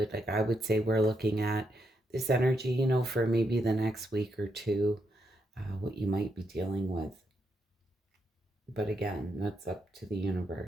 Like I would say, we're looking at this energy, for maybe the next week or two, what you might be dealing with. But again, that's up to the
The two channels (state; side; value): normal; both; correlation 0.80